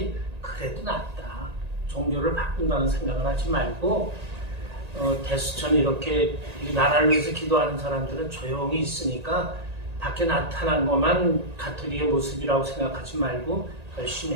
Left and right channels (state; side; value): late; left; 1.8 ms